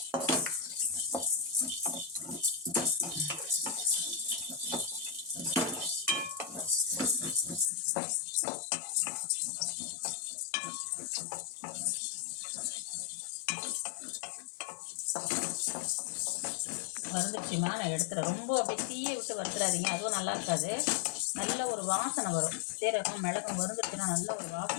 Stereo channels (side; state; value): right; drops out; at 7.7 s